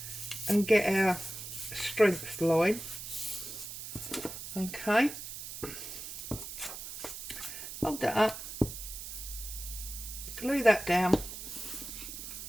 and get our strength line. Okay. Fold that up. Glue that down.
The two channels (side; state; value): right; noise; hiss, 9 dB below the sound